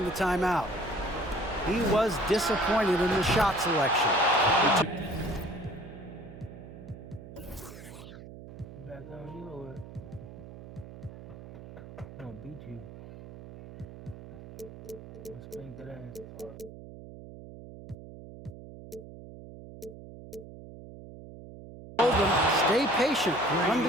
the timeout. He was disappointed in the shot selection. Back on you or what? I'm gonna beat you. I'm gonna spank that ass. Told them, stay patient, run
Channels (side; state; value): right; noise; hum, 15 dB below the sound